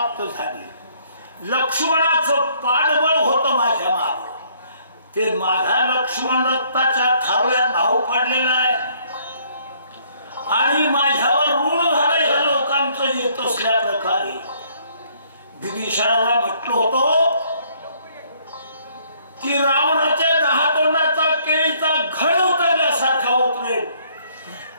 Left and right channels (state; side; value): inverted; both; correlation -0.64